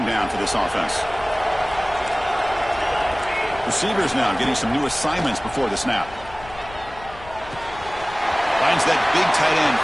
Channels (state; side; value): noise; left; rumble, 18 dB below the sound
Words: down for this offense? Receivers now getting some new assignments before the snap. Finds that big tight end